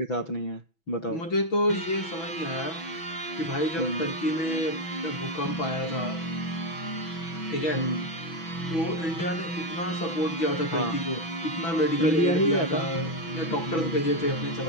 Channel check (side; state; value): right; late; 6.1 ms